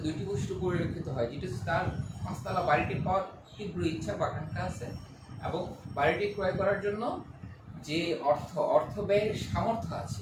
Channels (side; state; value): both; identical; correlation 1.00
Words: 2টি বৈশিষ্ট্য পরিলক্ষিত হয়, যেটা হচ্ছে তার 5তলা বাড়িটি পাওয়ার তীব্র ইচ্ছা বা আকাঙ্ক্ষা আছে এবং বাড়িটি ক্রয় করার জন্য যে অর্থ ব্যয়ের সামর্থ্য